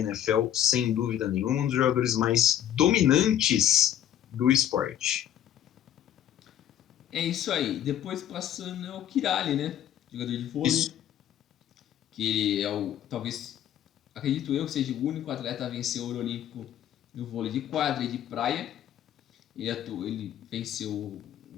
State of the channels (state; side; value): quieter; right; 10.8 dB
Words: sem dúvida nenhuma. Um dos jogadores mais dominantes do esporte. É isso aí. Depois passando é o Kiraly, né? Jogador de vôlei. Isso. Que é talvez, acredito eu, que seja o único atleta a vencer o ouro olímpico no vôlei de quadra e de praia. Ele venceu